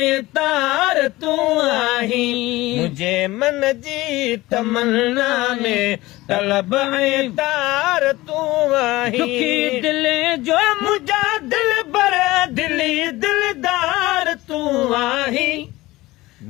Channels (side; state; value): right; quieter; 19.0 dB